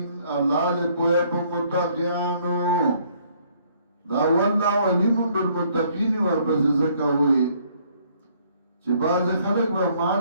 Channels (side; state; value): both; inverted; correlation -0.64